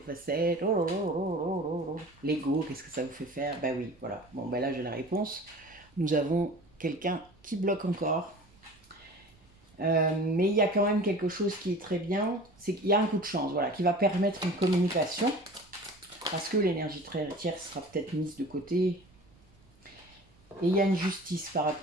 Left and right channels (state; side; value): noise; right; rumble, 30 dB below the sound